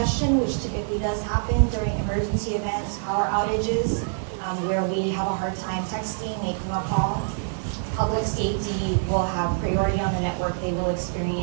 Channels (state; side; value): silent; left; digital silence